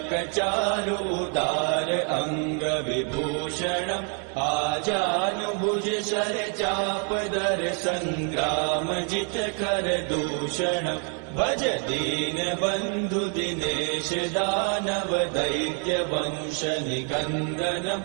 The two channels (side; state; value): left; quieter; 39.8 dB